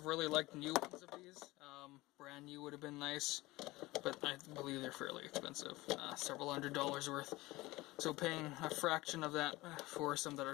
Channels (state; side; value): quieter; right; 19.9 dB